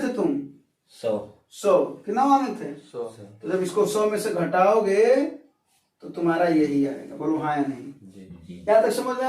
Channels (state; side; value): identical; both; correlation 1.00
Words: थे तुम 100 कितना माने थे 100 तो जब इसको 100 में से घटाओगे तो तुम्हारा यही आएगा बोलो हाँ या नहीं क्या तक समझ में